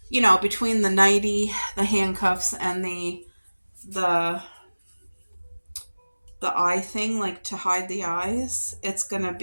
you know, between the nightie, the handcuffs, and the eye thing, like to hide the eyes, it's going to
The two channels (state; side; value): inverted; both; correlation -1.00